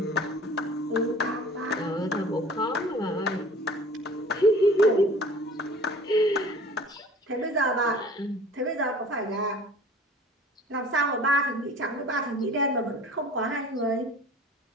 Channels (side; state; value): both; normal; correlation 0.46